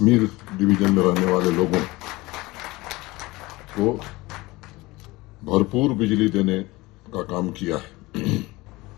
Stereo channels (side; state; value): right; quieter; 21.2 dB